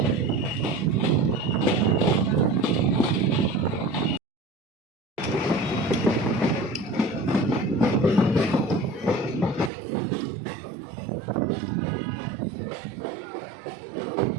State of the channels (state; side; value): drops out; left; at 9.7 s